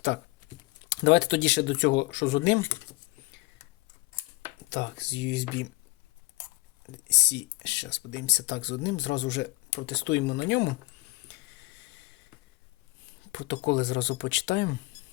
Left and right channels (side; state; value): right; quieter; 22.6 dB